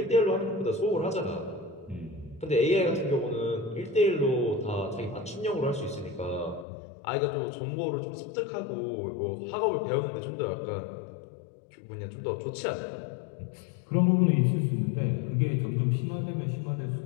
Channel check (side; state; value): right; drops out; at 6.7 s